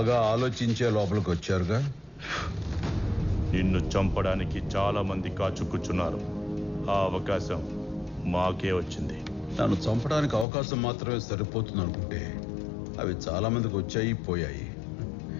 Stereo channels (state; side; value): drops out; right; at 10.5 s